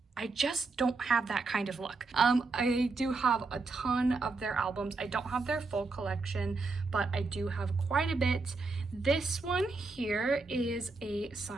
I just don't have that kind of luck. I do have a ton of their albums. I don't have their full collection, but I do have quite a bit. This one here is a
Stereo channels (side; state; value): left; quieter; 3.9 dB